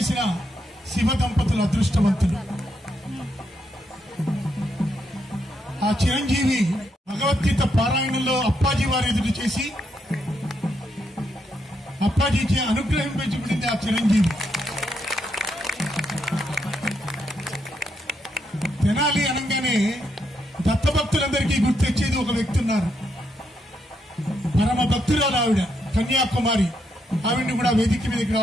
శివ దంపతులు అదృష్టవంతులు. ఆ చిరంజీవి భగవద్గీత పారాయణంలో అప్పాజీ వారి ఎదురు చేసి అప్పాజీకి అనుగ్రహింపబడింది ఆ చిరంజీవి. తెనాలి అనగానే దత్తభక్తులందరికీ గుర్తొచ్చేది ఒక వ్యక్తి ఉన్నారు. పరమ భక్తురాలు ఆవిడ, కన్యాకుమారి. ఆవిడ్ని కూడా వేదిక మీదకి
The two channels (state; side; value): normal; both; correlation 0.79